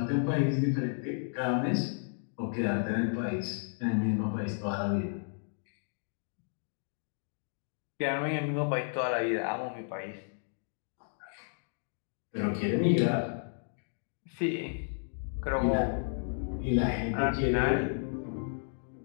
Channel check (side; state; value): right; silent; digital silence